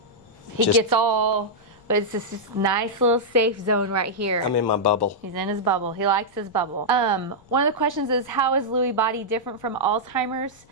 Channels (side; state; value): left; noise; rumble, 28 dB below the sound